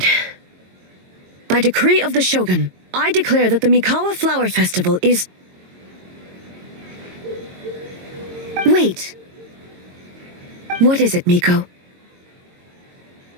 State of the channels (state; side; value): late; left; 22 ms